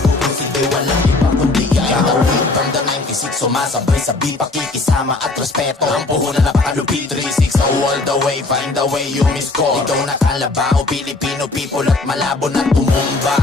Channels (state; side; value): quieter; right; 3.3 dB